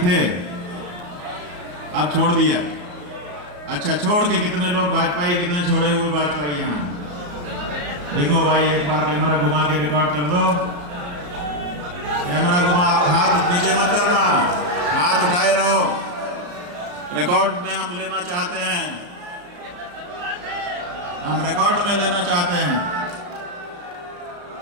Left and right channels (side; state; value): left; late; 34 ms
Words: अब छोड़ दिया। अच्छा, छोड़ के कितने लोग भाजपाई, कितने छोड़े हुए भाजपाई यहाँ देखो भाई, एक बार कैमरा घुमा के रिकॉर्ड कर दो। कैमरा घुमा, हाथ नीचे मत करना, हाथ उठाए रहो। रिकॉर्ड में हम लेना चाहते हैं, हम रिकॉर्ड में लेना चाहते हैं,